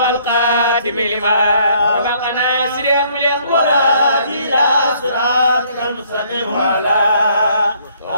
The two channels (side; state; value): both; inverted; correlation -0.64